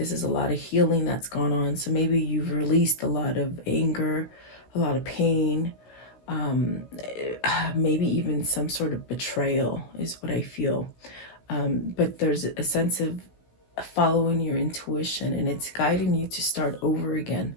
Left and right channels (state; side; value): late; right; 16 ms